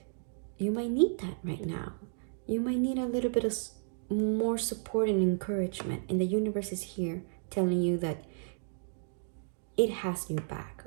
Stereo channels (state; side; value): silent; left; digital silence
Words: you might need that right now. You might need a little bit of more support and encouragement, and the universe is here telling you that it has your back,